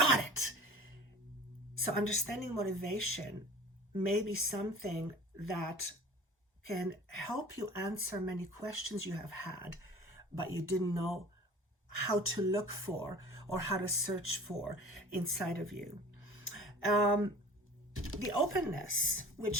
it. So understanding motivation may be something that can help you answer many questions you have had, but you didn't know how to look for or how to search for inside of you. The openness,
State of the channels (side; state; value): both; normal; correlation 0.42